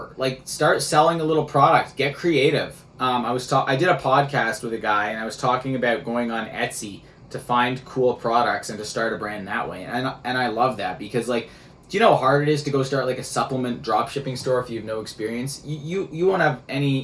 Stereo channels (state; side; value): identical; both; correlation 1.00